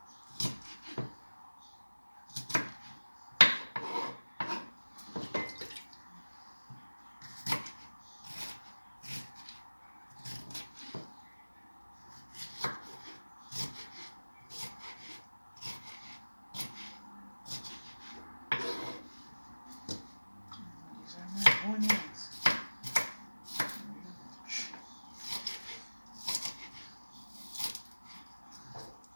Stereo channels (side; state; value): both; inverted; correlation -1.00